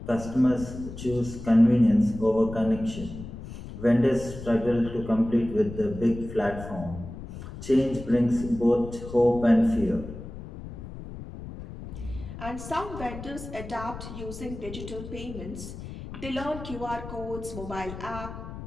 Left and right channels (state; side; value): noise; left; rumble, 11 dB below the sound